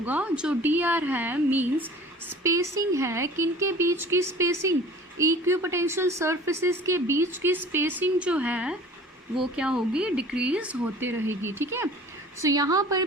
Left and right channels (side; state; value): both; normal; correlation 0.45